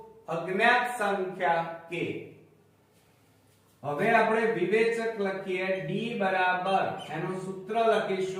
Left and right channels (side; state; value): both; identical; correlation 1.00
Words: અજ્ઞાત સંખ્યા k. હવે આપણે વિવેચક લખીએ d બરાબર, એનું સૂત્ર